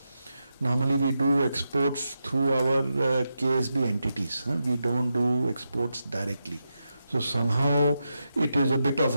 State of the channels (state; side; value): inverted; both; correlation -0.87